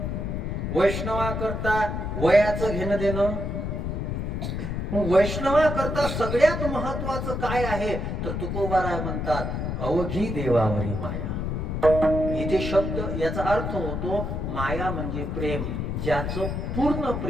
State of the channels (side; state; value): left; noise; rumble, 3 dB below the sound